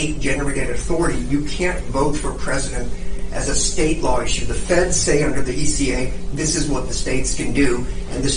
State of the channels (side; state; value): both; identical; correlation 1.00